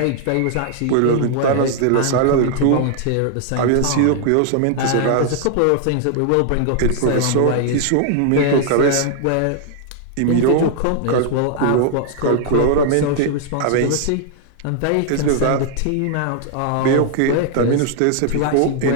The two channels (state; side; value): different; both; correlation 0.00